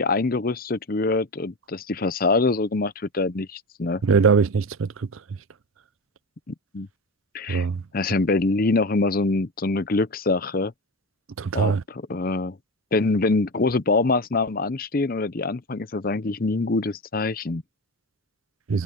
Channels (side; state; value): both; normal; correlation 0.24